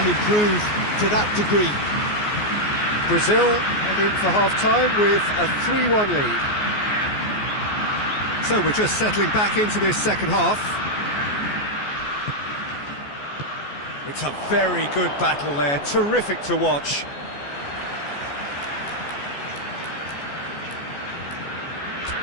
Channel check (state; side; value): late; right; 14 ms